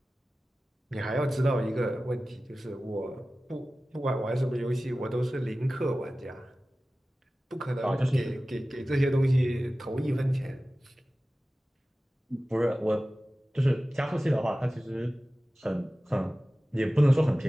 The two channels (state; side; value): normal; both; correlation 0.96